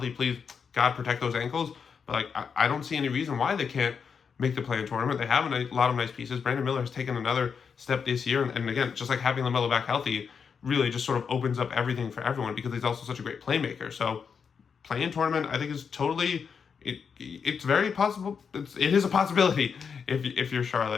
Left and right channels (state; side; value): quieter; right; 6.3 dB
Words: Please, God, protect those ankles. But like, I don't see any reason why they can't make the play-in tournament. They have a lot of nice pieces. Brandon Miller has taken another step this year, and again, just like having LaMelo back healthy really just sort of opens up everything for everyone because he's also such a great playmaker. So play-in tournament, I think, is totally, it's very possible. It is a possibility if you're